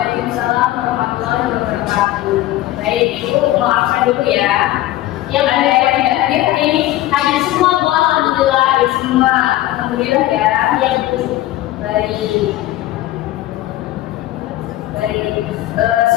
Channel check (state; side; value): quieter; right; 15.2 dB